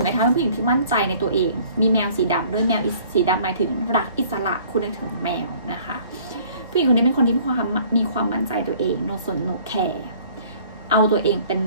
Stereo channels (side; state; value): both; inverted; correlation -0.54